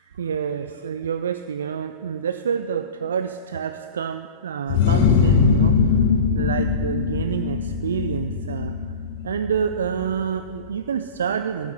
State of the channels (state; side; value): inverted; both; correlation -0.35